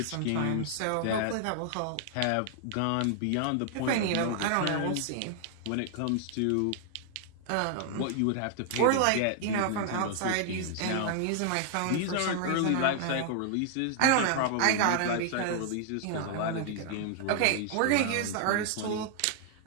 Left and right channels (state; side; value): different; both; correlation 0.00